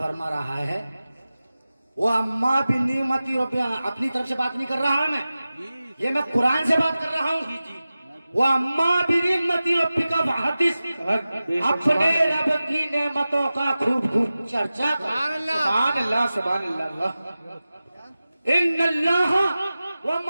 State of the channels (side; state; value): both; inverted; correlation -0.96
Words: رہا ہے وہ اما بنعمت ربک، اپنی طرف سے بات نہیں کر رہا میں، یہ میں قرآن سے بات کر رہا ہوں۔ وہ اما بنعمت ربک فحدث، اپنے رب کی نعمتوں کا خوب خوب چرچا کر۔ سبحان اللہ سبحان اللہ۔ ان اللہ